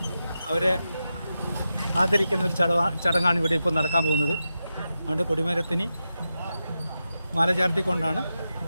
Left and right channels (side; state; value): both; inverted; correlation -0.90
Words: അവരെ ആദരിക്കുന്ന ഒരു ചടങ്ങാണ് ഇവിടെ ഇപ്പോൾ നടക്കാൻ പോകുന്നത്. അതുകൊണ്ട് കൊടിമരത്തിന് മാല ചാർത്തിക്കൊണ്ടാണ്